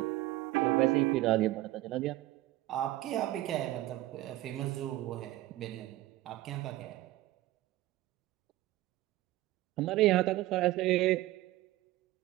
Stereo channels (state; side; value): quieter; left; 16.6 dB